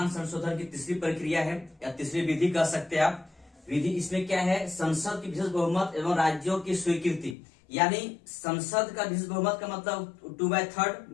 संशोधन की तीसरी प्रक्रिया है, या तीसरी विधि कह सकते हैं आप। विधि इसमें क्या है, संसद की विशेष बहुमत एवं राज्यों की स्वीकृति, यानी संसद का विशेष बहुमत का मतलब 2/3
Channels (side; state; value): right; drops out; at 7.4 s